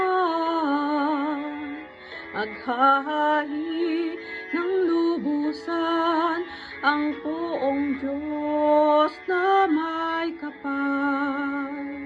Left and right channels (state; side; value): identical; both; correlation 1.00